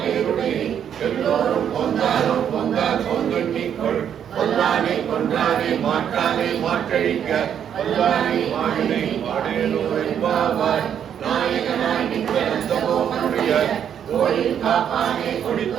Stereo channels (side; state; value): left; quieter; 8.9 dB